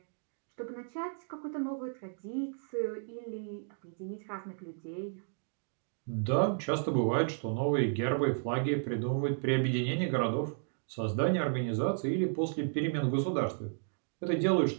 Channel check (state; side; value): silent; left; digital silence